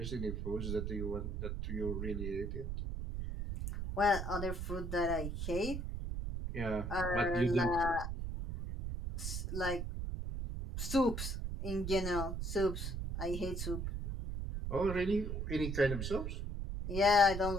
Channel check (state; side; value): noise; right; rumble, 3 dB below the sound